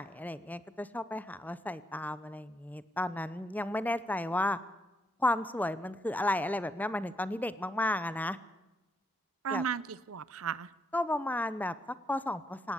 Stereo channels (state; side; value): normal; both; correlation 0.77